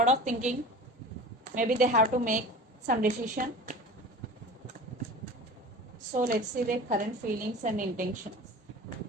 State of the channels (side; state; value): both; normal; correlation 0.37